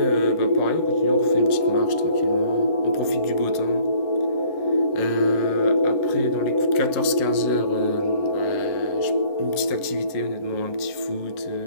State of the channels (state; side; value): late; right; 11 ms